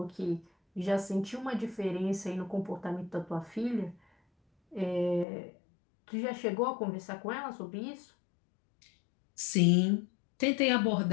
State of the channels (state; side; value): drops out; right; at 5.2 s